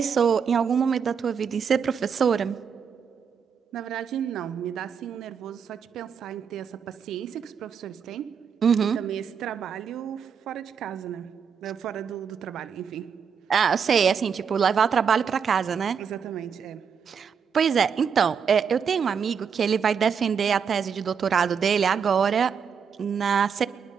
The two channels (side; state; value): left; quieter; 6.8 dB